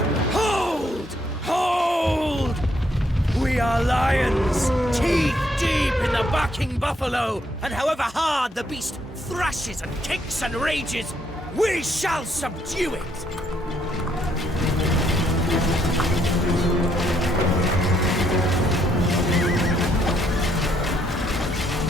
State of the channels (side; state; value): both; normal; correlation 0.72